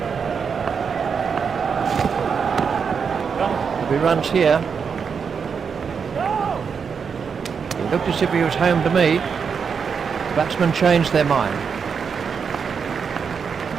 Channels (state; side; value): quieter; left; 6.2 dB